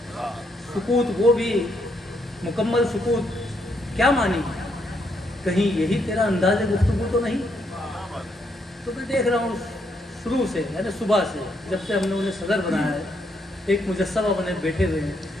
सुकूत वो भी मुकम्मल सुकूत क्या मानी, कहीं यही तेरा अंदाज़ गुफ्तगू तो नहीं। तो मैं देख रहा हूँ शुरू से, यानी सुबह से जब से हमने उन्हें सदर बनाया है, एक मुजस्समा बने बैठे हुए हैं,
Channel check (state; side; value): normal; both; correlation 0.76